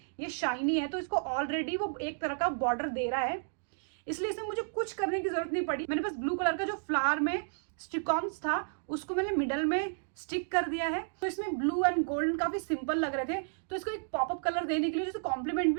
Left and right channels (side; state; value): left; silent; digital silence